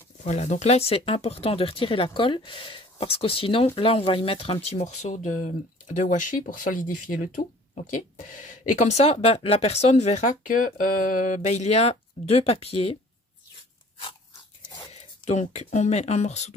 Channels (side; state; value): both; normal; correlation 0.50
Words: Voilà, donc là c'est important de retirer la colle parce que sinon, là on va y mettre un petit morceau de washi pour solidifier le tout. Ok. Et comme ça, ben, la personne verra que il y a deux papiers. Donc, on met un morceau